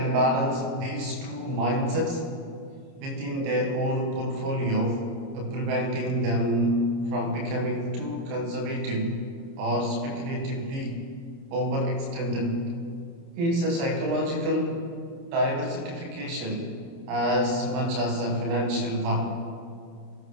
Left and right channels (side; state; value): left; late; 29 ms